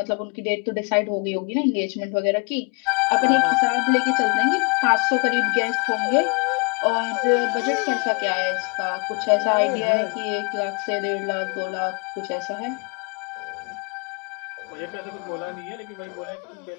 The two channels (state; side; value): quieter; right; 32.4 dB